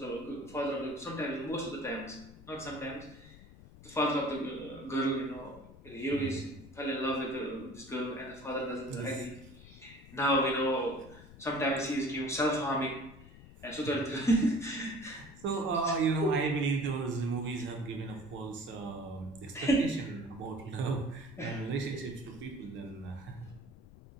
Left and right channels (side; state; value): left; noise; rumble, 19 dB below the sound